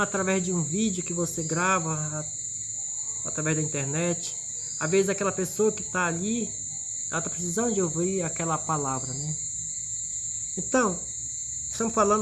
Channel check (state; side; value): identical; both; correlation 1.00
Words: através de um vídeo que você grava, através da internet. Às vezes aquela pessoa que está ali, ela está precisando de ouvir aquela palavra, né? Então, estamos